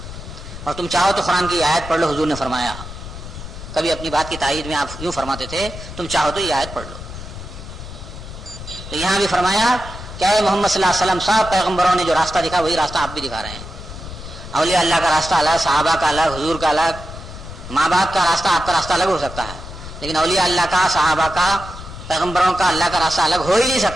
اور تم چاہو تو قرآن کی آیت پڑھ لو, حضور نے فرمایا. کبھی اپنی بات کی تائید میں آپ یوں فرماتے تھے, تم چاہو تو یہ آیت پڑھ لو. تو یہاں بھی فرمایا کہ اے محمد صلی اللہ علیہ وسلم, صاحب پیغمبروں نے جو راستہ دکھا وہی راستہ آپ بھی دکھا رہے ہیں. اولیاء اللہ کا راستہ الگ, صحابہ کا الگ, حضور کا الگ, ماں باپ کا راستہ, آپ کا راستہ الگ ہو سکتا ہے, لیکن اولیاء اللہ کا, صحابہ کا, پیغمبروں کا, اللہ کا راستہ الگ ہو ہی نہیں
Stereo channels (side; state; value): left; noise; rumble, 12 dB below the sound